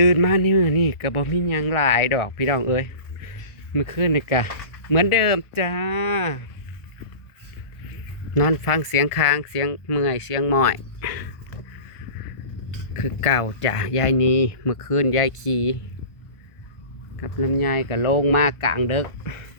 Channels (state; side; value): late; right; 1.4 ms